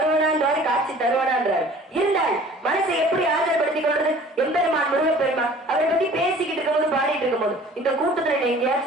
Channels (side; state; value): both; normal; correlation 0.48